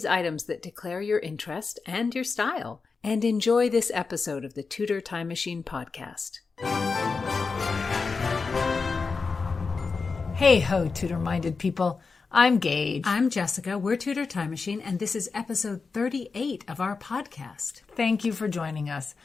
items that declare your interest and your style. And enjoy this episode of the Tudor Time Machine podcast. Hey ho, Tudor-minded people. I'm Gage. I'm Jessica. We're Tudor Time Machine, and this is episode 38 of our podcast. Thank you for joining us.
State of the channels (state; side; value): quieter; right; 4.6 dB